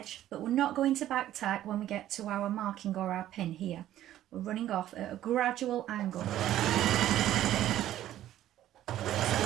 but we're not going to back tack when we get to our marking or our pin here. We're running off at a gradual angle. So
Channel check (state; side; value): quieter; left; 12.9 dB